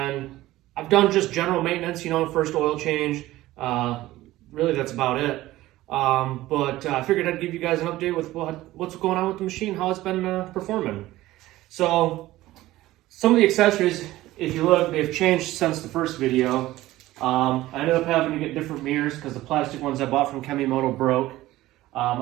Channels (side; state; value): left; quieter; 16.5 dB